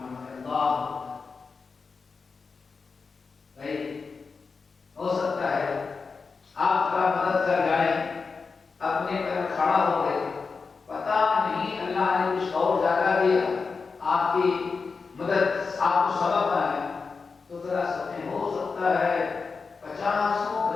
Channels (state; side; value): quieter; right; 4.8 dB